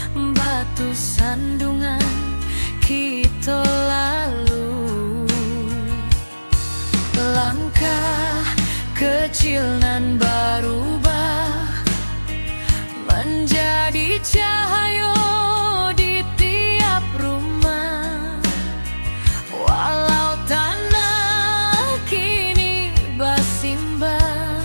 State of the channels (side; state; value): both; inverted; correlation -1.00